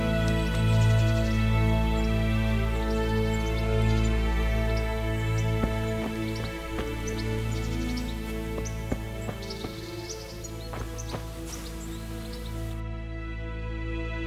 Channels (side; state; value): both; identical; correlation 1.00